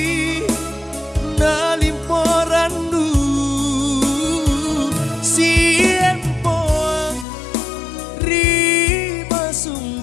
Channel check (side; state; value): right; drops out; at 7.2 s